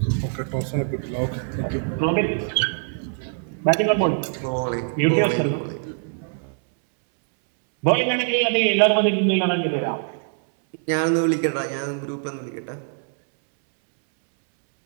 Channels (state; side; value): silent; left; 63 dB below the other